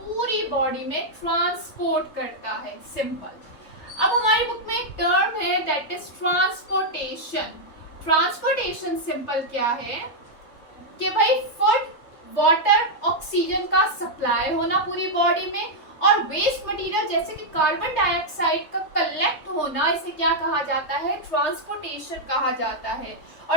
बॉडी में ट्रांसपोर्ट करता है। सिंपल। अब हमारी बुक में एक टर्म है that is transportation. Transportation simple क्या है कि भाई फूड, वाटर, ऑक्सीजन का सप्लाई होना पूरी बॉडी में और वेस्ट मटेरियल जैसे कि कार्बन डाइऑक्साइड का कलेक्ट होना, इसे क्या कहा जाता है? ट्रांसपोर्टेशन कहा जाता है।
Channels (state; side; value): late; right; 3.6 ms